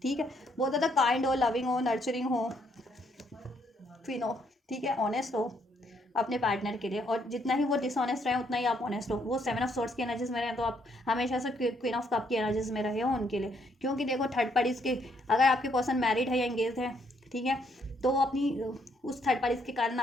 ठीक है, बहुत ज़्यादा काइंड हो, लविंग हो, नर्चरिंग हो, क्वीन हो, ठीक है, ऑनेस्ट हो अपने पार्टनर के लिए, और जितना ही वो डिसऑनेस्ट रहे उतना ही आप ऑनेस्ट हो। वो 7 ऑफ सोर्ट्स की एनर्जीज में रहे तो आप हमेशा से क्वीन ऑफ कप की एनर्जीज में रहे हो उनके लिए, क्योंकि देखो थर्ड पार्टीज के, अगर आपके पर्सन मैरिड है या एंगेज है, ठीक है, तो वो अपनी उस थर्ड पार्टीज के कारण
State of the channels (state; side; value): normal; both; correlation 0.71